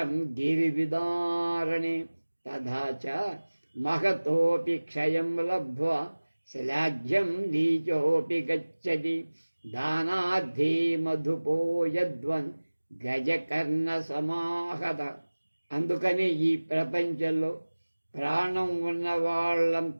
గిరివిదారణే తథా చ మహతోపి క్షయం లబ్ధ్వా శ్లాఘ్యం నీచోపి గచ్చతి దానార్థీ మధుపో యద్వన్ గజకర్ణ సమాహత. అందుకని ఈ ప్రపంచంలో ప్రాణం ఉన్న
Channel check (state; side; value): inverted; both; correlation -1.00